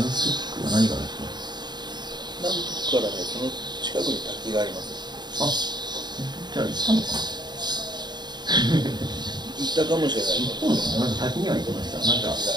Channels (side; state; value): left; late; 0.21 ms